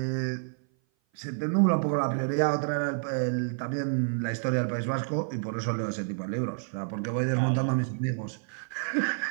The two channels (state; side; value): silent; left; 56 dB below the other